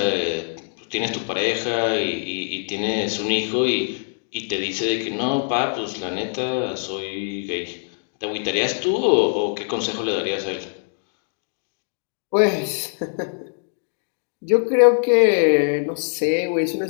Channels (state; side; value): silent; right; digital silence